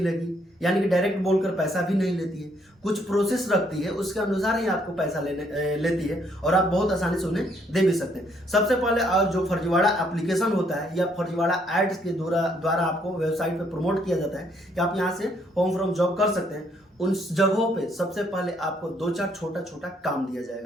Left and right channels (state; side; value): normal; both; correlation 0.69